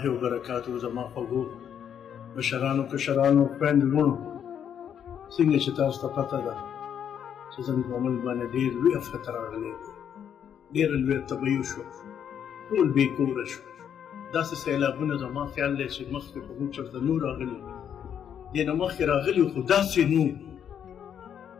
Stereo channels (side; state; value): right; quieter; 8.7 dB